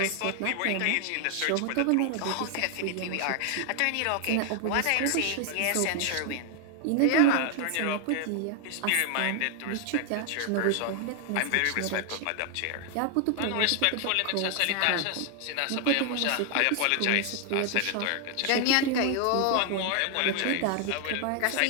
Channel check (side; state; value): both; different; correlation 0.00